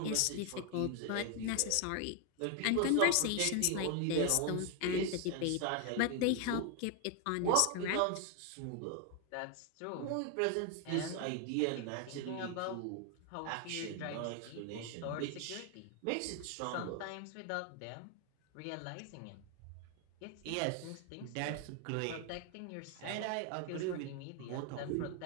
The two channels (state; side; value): different; both; correlation 0.01